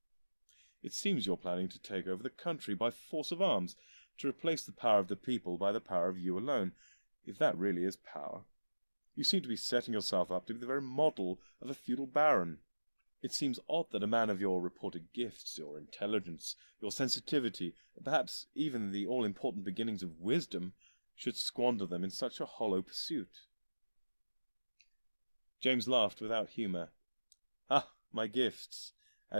It seems you're planning to take over the country by force of arms, to replace the power of the people by the power of you alone, if that really is power. You seem to be setting yourself up to be the very model of a feudal baron. It seems odd that a man of your reported gifts, your intelligence, your sensitivity, perhaps even the all-important beginnings of wisdom, should squander them in such a hollow pursuit. James laughed without humour. Ah, my gifts.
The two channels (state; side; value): inverted; both; correlation -1.00